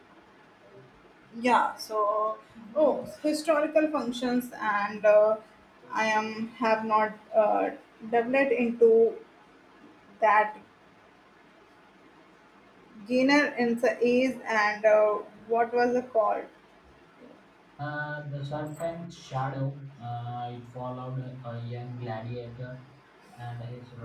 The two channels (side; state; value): both; identical; correlation 1.00